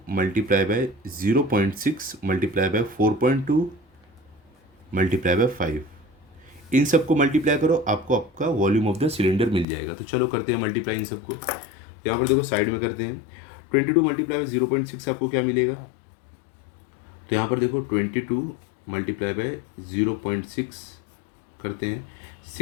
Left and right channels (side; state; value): right; drops out; at 9.7 s